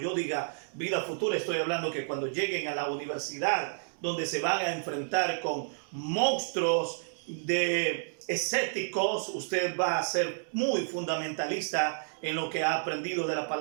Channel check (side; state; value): left; silent; digital silence